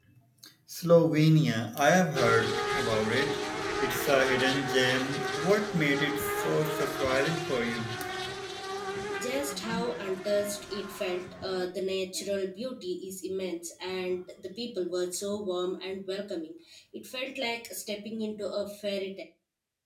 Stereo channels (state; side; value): identical; both; correlation 1.00